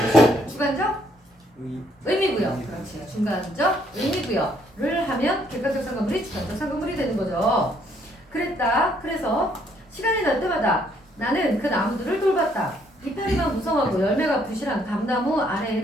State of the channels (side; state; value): both; normal; correlation 0.68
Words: 주관적 의미부여. 그렇지. 중간적 의미부여를 하면 객관적 상관물이 주관적 상관물이 되는 거죠. 그랬다. 그래서 시간이 날 때마다 나는 그 나무들을 돌봤다. 이파리만 무성하고 열매가 부실한 감나무